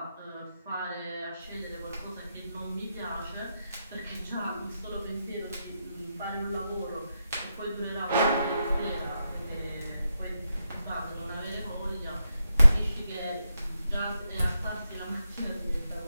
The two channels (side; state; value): both; inverted; correlation -0.85